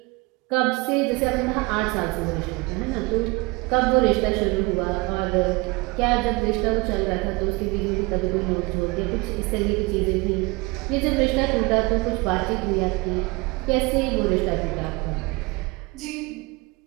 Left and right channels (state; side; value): quieter; left; 25.1 dB